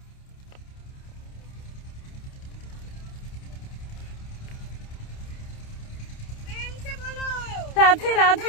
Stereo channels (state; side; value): late; right; 29 ms